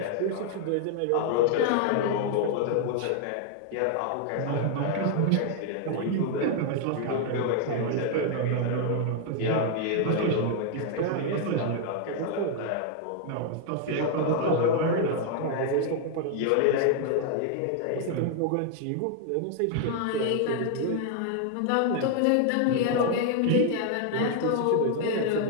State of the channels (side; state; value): both; different; correlation 0.00